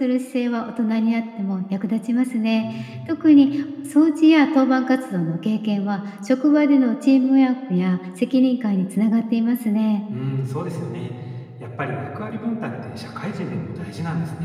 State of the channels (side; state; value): both; identical; correlation 1.00